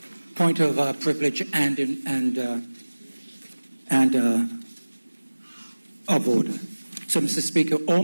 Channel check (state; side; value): inverted; both; correlation -1.00